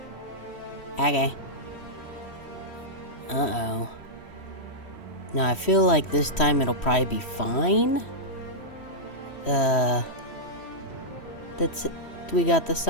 Okay. Uh-oh. Now, I feel like this time it'll probably be fine. That's it. We got the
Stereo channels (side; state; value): right; late; 3.1 ms